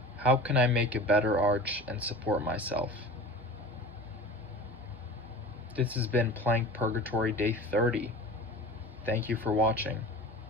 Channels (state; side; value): normal; both; correlation 0.36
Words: How can I make a better arch and support myself? This has been Plank Purgatory Day 30. Thank you for watching.